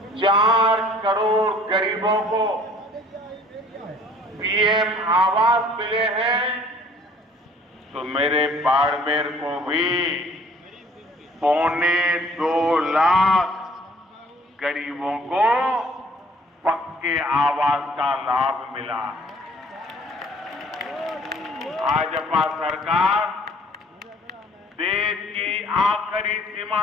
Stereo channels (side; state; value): both; normal; correlation 0.55